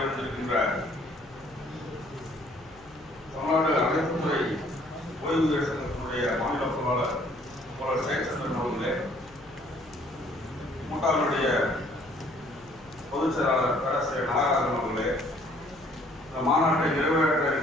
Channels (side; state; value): left; noise; hum, 26 dB below the sound